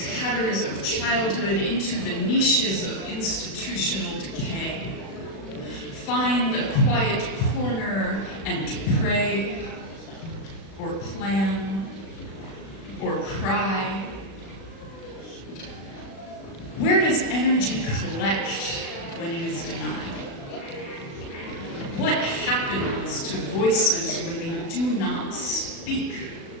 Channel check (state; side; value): late; right; 36 ms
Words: tatters of childhood into the niches of institutional decay. Find a quiet corner and pray, or plan, or cry. Where does energy collect when it is denied? What happens to voices when they do not speak?